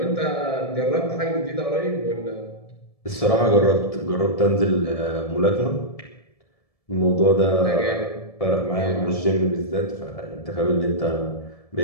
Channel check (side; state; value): right; late; 1.7 ms